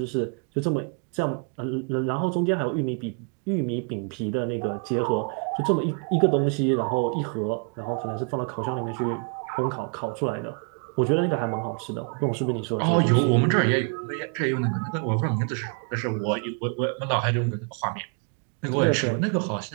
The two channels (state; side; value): quieter; left; 38.0 dB